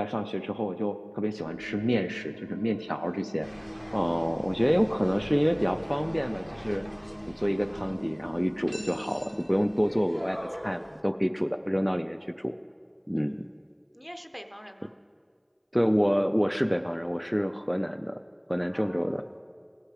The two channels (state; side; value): identical; both; correlation 1.00